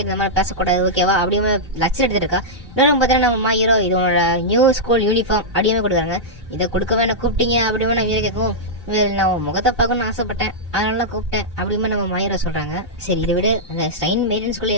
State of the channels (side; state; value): both; normal; correlation -0.09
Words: இந்த மாதிரி பேசக்கூடாது ஓகேவா அப்படியுமே லட்சம் எடுத்துட்டு இருக்கா. இன்னொரு பார்த்தீங்கன்னா நம்ம ஹீரோ இது உன்னோட நியூ ஸ்கூல் யூனிஃபார்ம் அப்படியுமே கொடுக்குறாங்க. இதை கொடுக்கவே என்ன கூப்பிட்டீங்க அப்படியுமே நான் ஹீரோ கேட்கும். நான் உன் முகத்தை பார்க்கணும்னு ஆசைப்பட்டேன் அதனால கூப்பிட்டேன் அப்படியுமே நம்ம மாயிரோ சொல்றாங்க. சரி இதை விட அந்த ஸ்ட்ரெயின் மெயின்டெனன்ஸ்